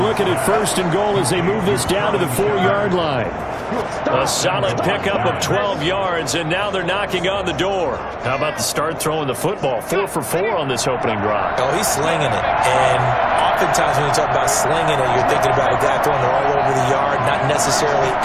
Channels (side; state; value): both; identical; correlation 1.00